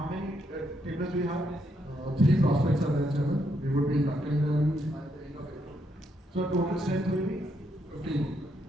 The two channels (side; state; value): both; normal; correlation 0.77